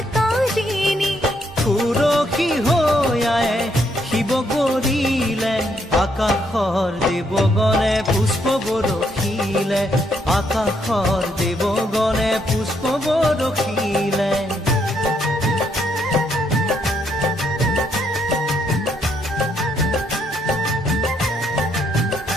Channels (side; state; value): both; normal; correlation 0.73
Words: সুরক্ষী হৈ আয়ে শিৱ গৰিলে আকাশৰ দেৱগণে পুষ্প বৰষিলে আকাশৰ দেৱগণে পুষ্প বৰষিলে